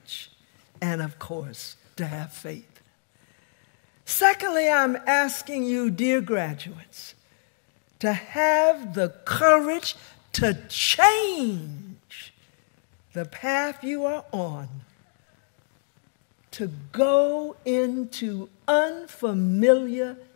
and, of course, to have faith. Secondly, I'm asking you, dear graduates, to have the courage to change the path you are on, to go into unfamiliar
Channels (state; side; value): silent; right; digital silence